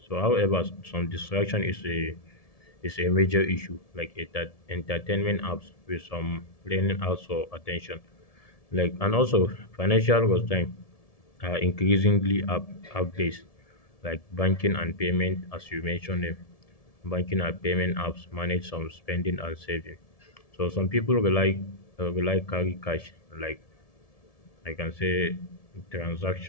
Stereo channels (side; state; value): right; late; 1.7 ms